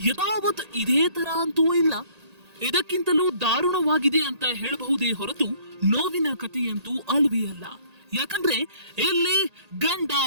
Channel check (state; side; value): late; left; 1.8 ms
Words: ಯಥಾವತ್ ಇದೇ ತರ ಅಂತೂ ಇಲ್ಲ, ಇದಕ್ಕಿಂತಲೂ ದಾರುಣವಾಗಿದೆ ಅಂತ ಹೇಳಬಹುದೇ ಹೊರತು ನೋವಿನ ಕಥೆಯಂತೂ ಅಲ್ವೇ ಅಲ್ಲ. ಯಾಕಂದ್ರೆ ಇಲ್ಲಿ ಗಂಡ